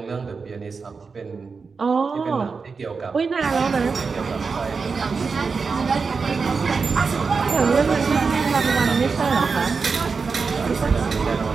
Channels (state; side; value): quieter; left; 4.9 dB